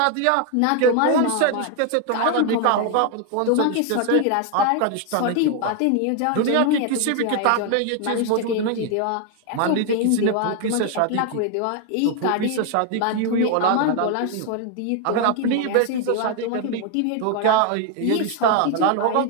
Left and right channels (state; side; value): different; both; correlation 0.01